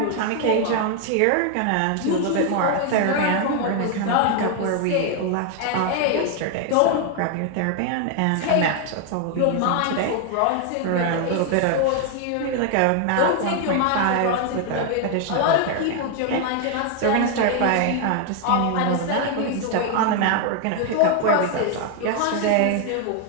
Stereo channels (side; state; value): both; different; correlation 0.00